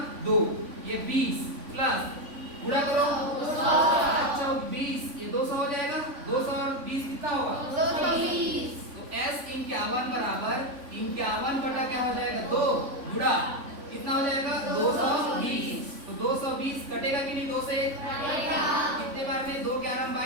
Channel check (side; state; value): left; late; 3.5 ms